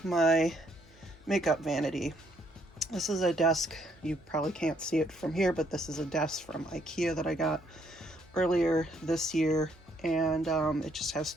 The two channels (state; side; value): normal; both; correlation 0.70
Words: my makeup vanity. This is a desk. You probably can't see it from here, but this is a desk from IKEA that I got earlier this year, and it just has